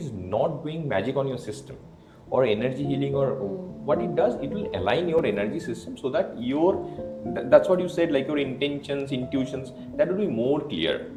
not doing magic on your system or energy healing, or what it does, it will align your energy system so that that's what you said, like your intentions, intuitions, that will be more clear.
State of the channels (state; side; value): identical; both; correlation 1.00